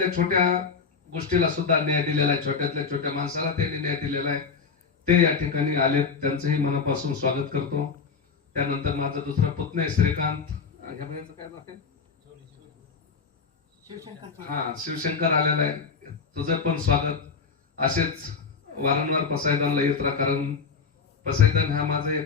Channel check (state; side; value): quieter; right; 5.4 dB